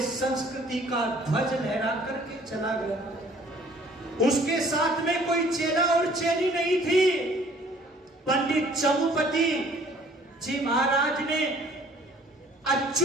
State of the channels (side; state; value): both; normal; correlation 0.56